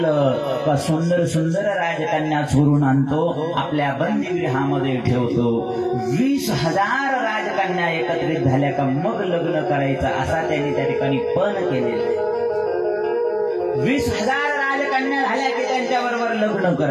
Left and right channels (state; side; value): identical; both; correlation 1.00